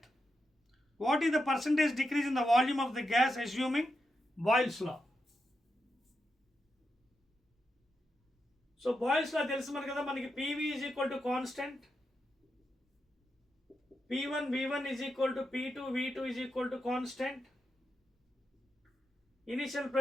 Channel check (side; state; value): both; normal; correlation 0.86